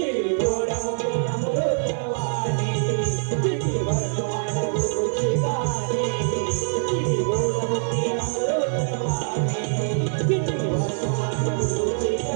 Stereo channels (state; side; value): silent; left; digital silence